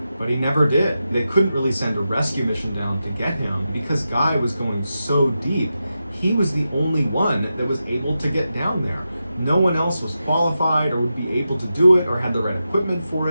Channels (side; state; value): both; inverted; correlation -0.90